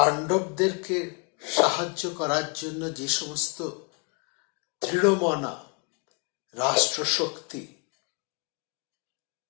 সাহায্য করার জন্য যে সমস্ত দৃঢ়মনা রাষ্ট্রশক্তি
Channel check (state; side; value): quieter; right; 32.4 dB